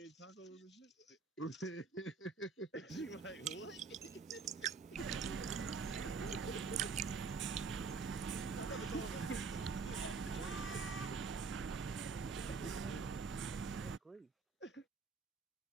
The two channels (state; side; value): quieter; left; 4.9 dB